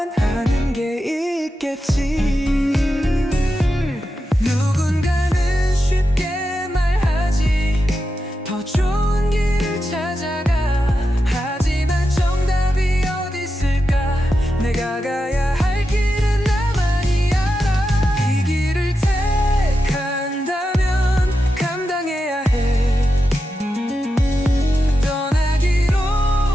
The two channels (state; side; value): normal; both; correlation 0.89